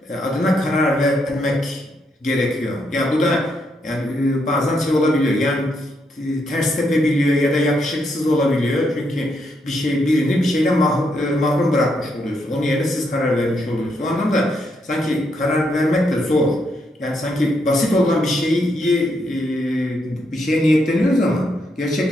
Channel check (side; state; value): both; normal; correlation 0.78